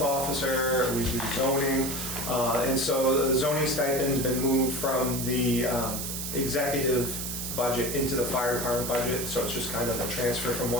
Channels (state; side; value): noise; right; hiss, 4 dB below the sound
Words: officer, we do zoning. And so the zoning stipend's been moved from the executive budget into the fire department budget. So it's just kind of a transfer from